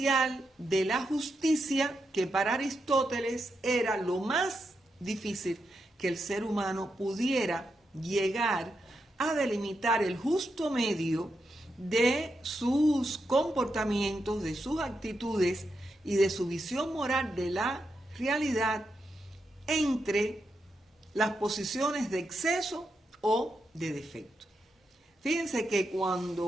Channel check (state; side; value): normal; both; correlation 0.85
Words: de la justicia, que para Aristóteles era lo más difícil que el ser humano pudiera llegar a delimitar el justo medio de sus comportamientos, de sus actitudes y de su visión moral de la realidad entre las posiciones de exceso o de defecto. Fíjense que